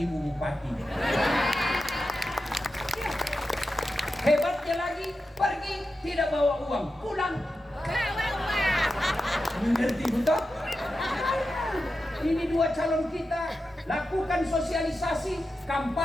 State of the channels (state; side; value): normal; both; correlation 0.91